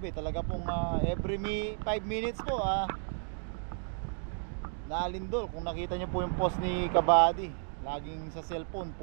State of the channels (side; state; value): left; silent; 56 dB below the other